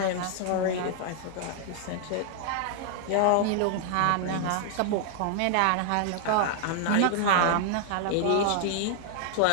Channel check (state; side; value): different; both; correlation 0.00